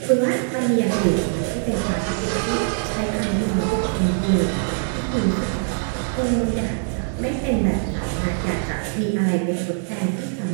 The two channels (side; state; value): left; silent; digital silence